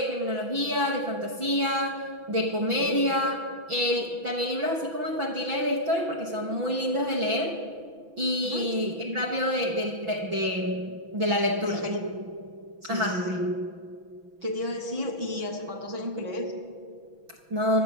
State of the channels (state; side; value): late; left; 6.1 ms